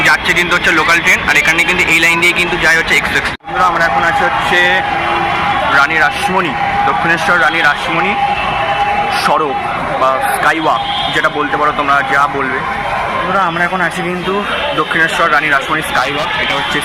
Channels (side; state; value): both; identical; correlation 1.00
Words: যাচ্ছে কিন্তু হচ্ছে লোকাল ট্রেন, আর এখানে কিন্তু এই লাইন দিয়ে কিন্তু যায় হচ্ছে এক্সপ্রেস। বন্ধুরা, আমরা এখন আছি হচ্ছে রানী রাসমণি, দক্ষিণেশ্বর রানী রাসমণি সড়ক বা স্কাইওয়াক, যেটা বলতে পারো তোমরা, যা বলবে। বন্ধুরা, আমরা এখন আছি কিন্তু দক্ষিণেশ্বর রানী রাসমণি স্কাইওয়াক। এটা হচ্ছে